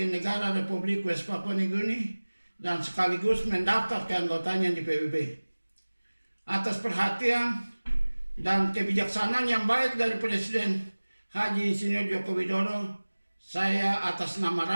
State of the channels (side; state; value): both; inverted; correlation -1.00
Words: negara Republik West Papua New Guinea dan sekaligus mendaftar keanggotanya di PBB. Atas perhatian dan kebijaksanaan yang baik dari Presiden Haji Insinyur Joko Widodo, saya atas nama